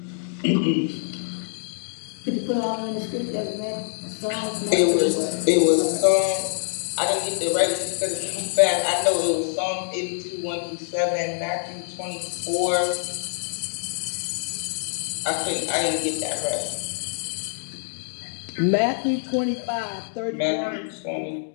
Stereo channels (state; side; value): silent; right; digital silence